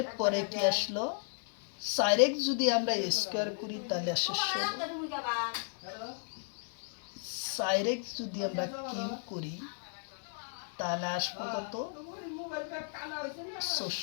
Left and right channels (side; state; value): right; silent; digital silence